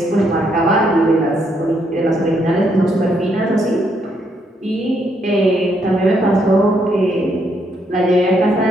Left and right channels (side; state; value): both; normal; correlation 0.74